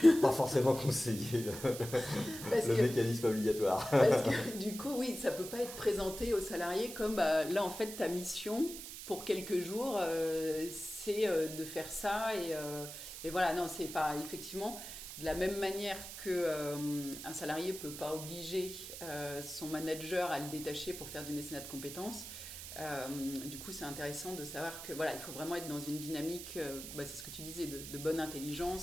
pas forcément conseiller le mécanisme obligatoire. Parce que du coup, oui, ça ne peut pas être présenté aux salariés comme là, en fait, ta mission pour quelques jours, c'est de faire ça. Et voilà, non, c'est pas effectivement de la même manière qu'un salarié ne peut pas obliger son manager à le détacher pour faire du mécénat de compétences. Du coup, c'est intéressant de savoir que il faut vraiment être dans une dynamique, c'est ce que tu disais, de bonne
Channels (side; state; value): right; noise; hiss, 10 dB below the sound